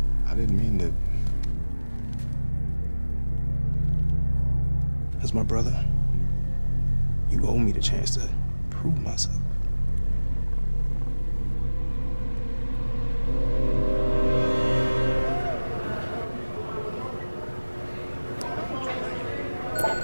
I didn't mean to... As my brother, you owe me the chance to prove myself.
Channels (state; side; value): inverted; both; correlation -1.00